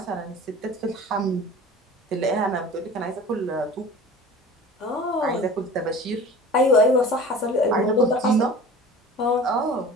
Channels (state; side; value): normal; both; correlation 0.40